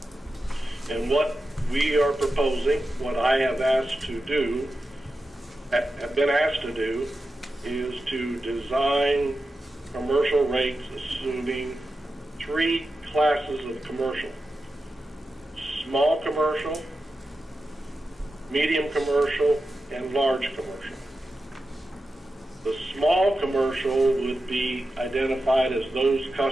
And what we are proposing, what I have been asked to do, is to design commercial rates assuming three classes of commercial: small commercial, medium commercial, and large commercial. The small commercial would be identified as those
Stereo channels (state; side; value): normal; both; correlation 0.91